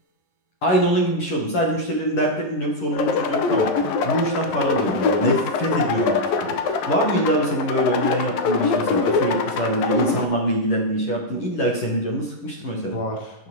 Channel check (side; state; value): right; late; 11 ms